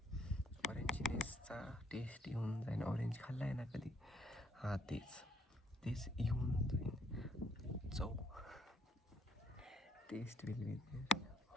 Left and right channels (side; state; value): both; normal; correlation 0.66